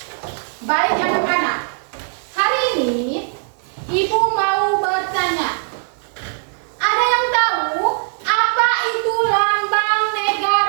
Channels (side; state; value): left; silent; digital silence